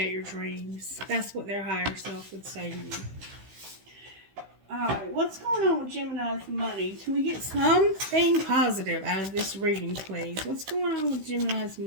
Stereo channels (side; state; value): left; late; 16 ms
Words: your dreams. That's what their higher self would say to you. Alright, what's going on with Gemini's money? Can we get something positive out of this reading, please? What's going on with Gemini's